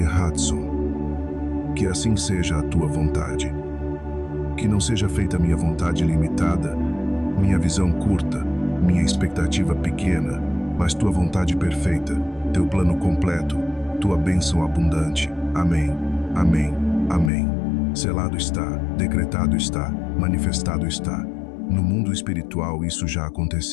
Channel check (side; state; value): right; drops out; at 17.3 s